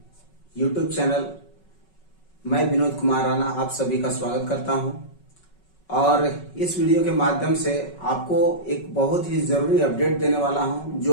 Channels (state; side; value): late; right; 5.4 ms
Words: यूट्यूब चैनल, मैं विनोद कुमार राणा आप सभी का स्वागत करता हूं। और इस वीडियो के माध्यम से आपको एक बहुत ही जरूरी अपडेट देने वाला हूं,